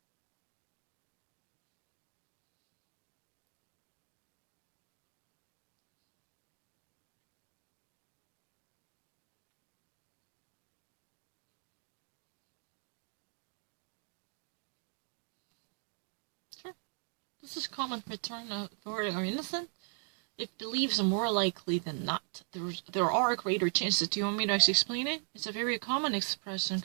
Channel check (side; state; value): left; silent; 52 dB below the other